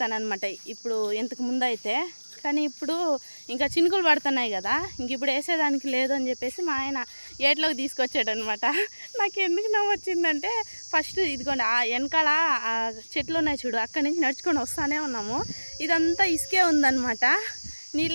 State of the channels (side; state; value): both; inverted; correlation -1.00